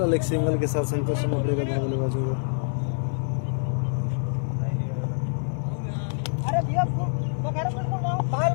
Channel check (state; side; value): silent; right; digital silence